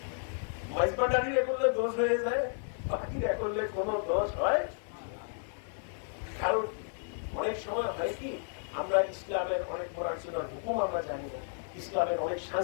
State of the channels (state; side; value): silent; right; 56 dB below the other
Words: মাইজবান্ডারিরা করলে দোষ হয়ে যায়, বাকিরা করলে কোনো দোষ হয়। কারণ অনেক সময় হয় কি, আমরা ইসলামের অনেক পড়াশোনার হুকুম আমরা জানি না, ইসলামের অনেক